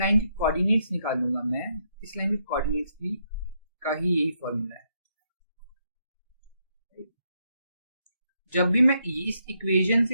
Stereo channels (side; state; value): both; inverted; correlation -0.77